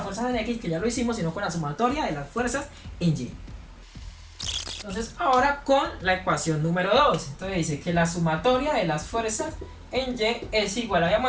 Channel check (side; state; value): both; identical; correlation 1.00